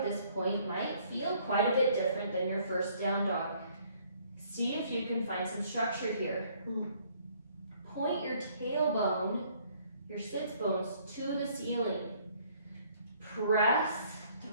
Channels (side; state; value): both; inverted; correlation -0.62